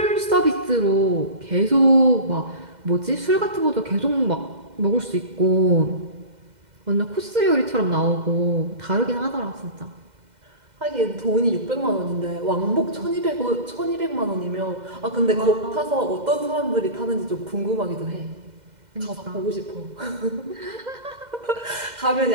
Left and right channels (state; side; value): late; left; 2.1 ms